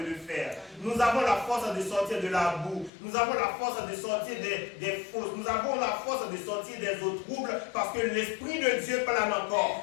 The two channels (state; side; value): drops out; right; at 2.9 s